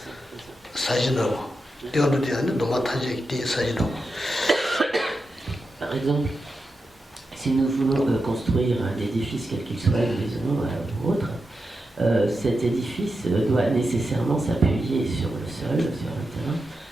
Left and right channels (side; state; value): both; normal; correlation 0.89